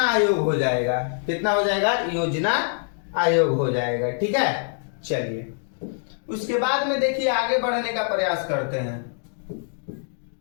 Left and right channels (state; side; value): silent; right; digital silence